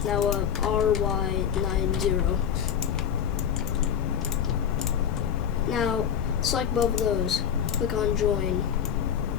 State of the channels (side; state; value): right; quieter; 8.5 dB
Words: Now RY90. Now select both of those. Click on join.